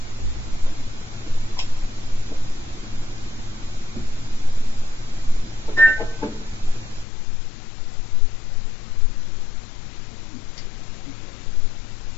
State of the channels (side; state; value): right; drops out; at 7.1 s